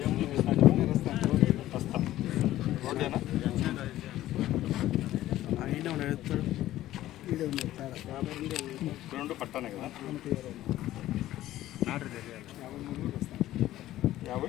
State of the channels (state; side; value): quieter; right; 14.4 dB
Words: రోడ్డేనా రెండు పట్టానే కదా